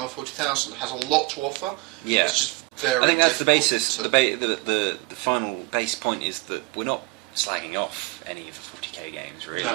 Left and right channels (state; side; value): quieter; left; 23.7 dB